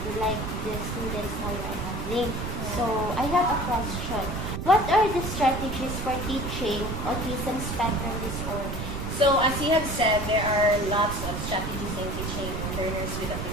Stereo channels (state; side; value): noise; right; rumble, 4 dB below the sound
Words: like the students now you are handling. So I have a question. What are the strategies for teaching autism spectrum disorder? So as you have said, there are lots of strategies in teaching learners with